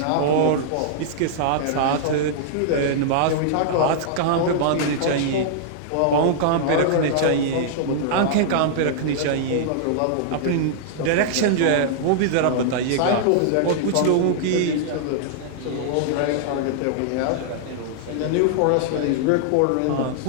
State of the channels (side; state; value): both; different; correlation -0.01